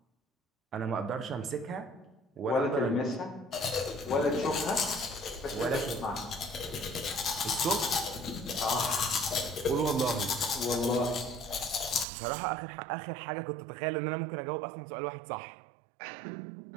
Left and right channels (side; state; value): left; drops out; at 12.1 s